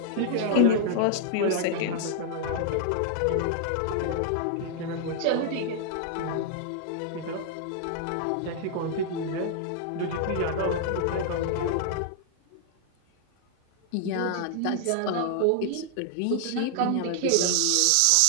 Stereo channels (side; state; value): both; different; correlation -0.01